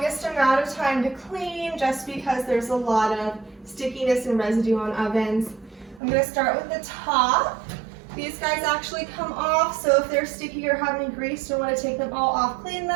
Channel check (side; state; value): left; drops out; at 6.0 s